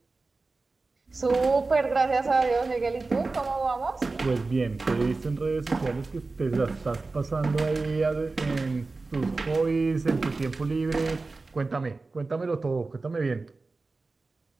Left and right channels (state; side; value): quieter; left; 3.7 dB